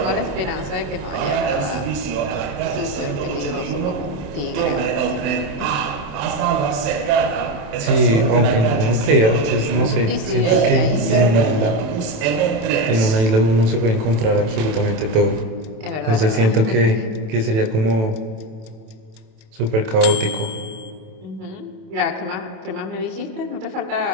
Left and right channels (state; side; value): late; left; 27 ms